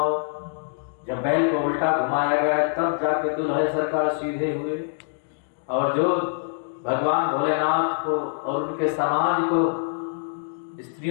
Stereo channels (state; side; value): silent; right; digital silence